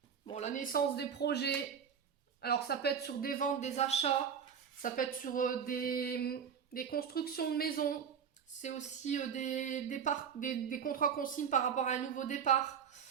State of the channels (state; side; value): quieter; left; 7.4 dB